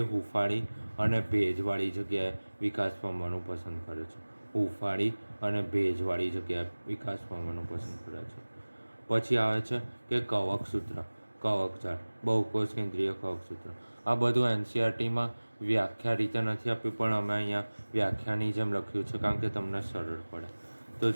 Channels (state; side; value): inverted; both; correlation -1.00